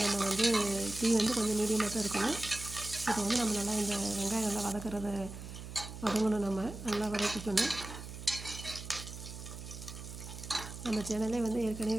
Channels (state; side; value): noise; right; hum, 11 dB below the sound